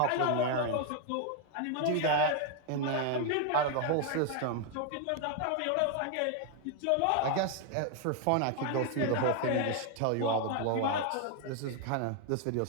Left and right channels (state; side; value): different; both; correlation 0.00